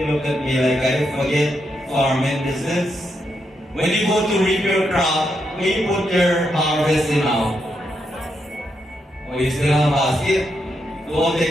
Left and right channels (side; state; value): both; normal; correlation 0.81